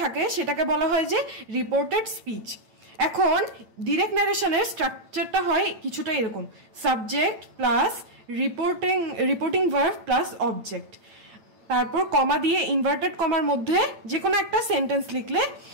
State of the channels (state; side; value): late; left; 8.9 ms